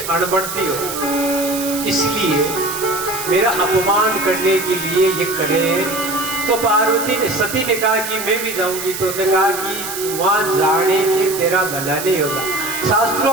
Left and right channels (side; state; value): right; noise; hiss, 7 dB below the sound